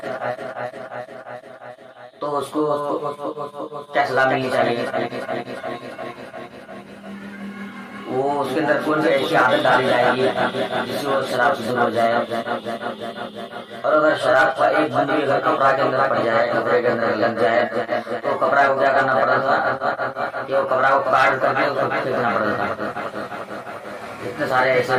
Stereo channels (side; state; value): both; identical; correlation 1.00